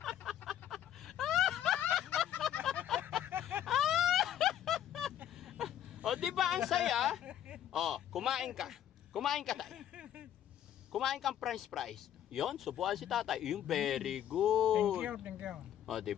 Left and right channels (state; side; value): quieter; right; 10.9 dB